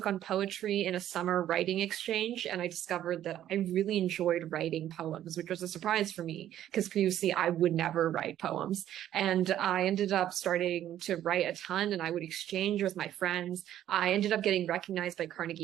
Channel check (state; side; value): quieter; left; 11.8 dB